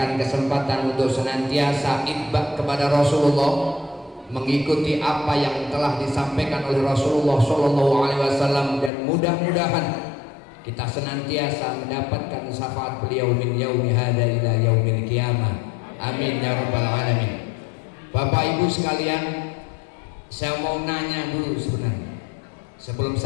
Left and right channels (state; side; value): drops out; right; at 8.9 s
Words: kesempatan untuk senantiasa itba kepada Rasulullah, mengikuti apa yang telah disampaikan oleh Rasulullah sallallahu alaihi wasallam, dan mudah-mudahan kita senantiasa mendapatkan syafaat beliau min yaumi hadza ila yaumil qiyamah. Amin ya rabbal alamin. Bapak Ibu sekalian, saya mau nanya dulu sebenarnya. Sebelum